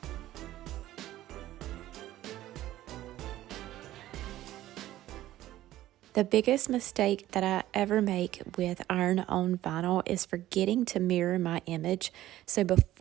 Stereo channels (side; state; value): left; quieter; 14.5 dB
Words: The biggest mistake that I ever make with iron-on vinyl is forgetting to mirror my image. So